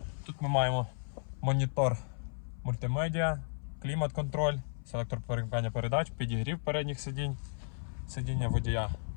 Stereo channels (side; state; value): right; silent; 55 dB below the other